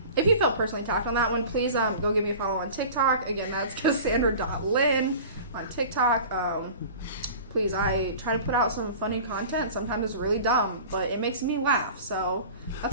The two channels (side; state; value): both; inverted; correlation -0.41